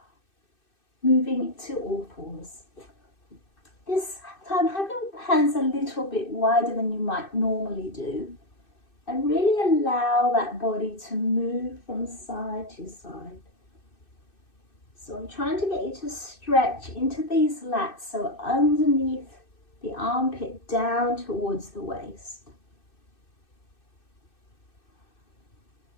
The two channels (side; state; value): right; late; 2.6 ms